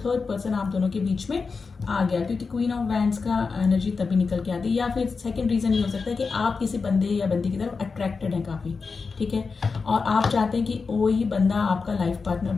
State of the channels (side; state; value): right; quieter; 4.7 dB